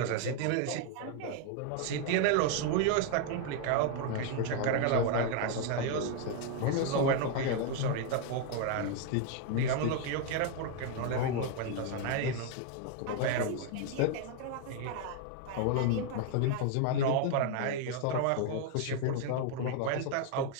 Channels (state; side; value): different; both; correlation 0.00